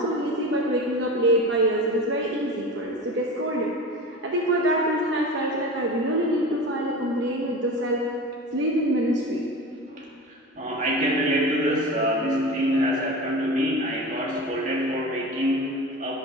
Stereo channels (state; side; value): normal; both; correlation 0.31